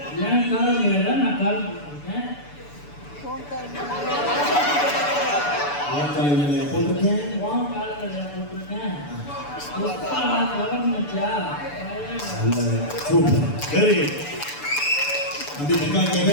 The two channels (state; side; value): late; right; 6.9 ms